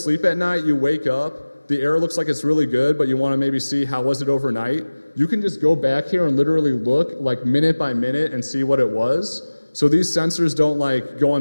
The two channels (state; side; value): inverted; both; correlation -1.00